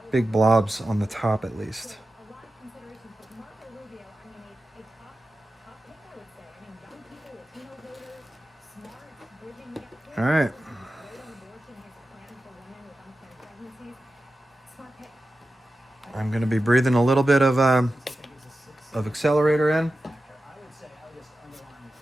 big blobs on the top at least. All right. I'm going to be breathing a little bit of accelerator in.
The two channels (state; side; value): normal; both; correlation 0.93